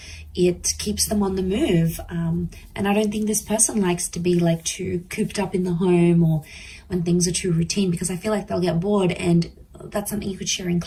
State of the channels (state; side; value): identical; both; correlation 1.00